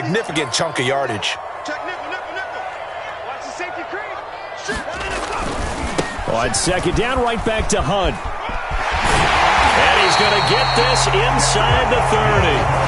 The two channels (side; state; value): both; identical; correlation 1.00